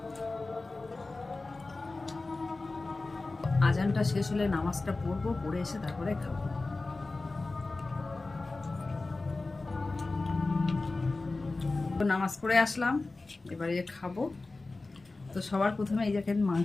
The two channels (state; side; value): quieter; right; 3.4 dB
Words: আজানটা শেষ হলে নামাজটা পড়বো, পড়ে এসে তারপরে খাবো। নামাজ পড়ে আসলাম, এবারে খাবো। তো সবার প্রথমে এই দেখেন